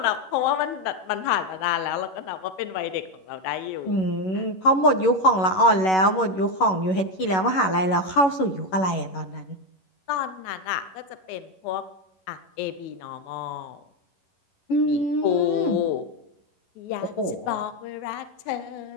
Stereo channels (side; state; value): right; late; 11 ms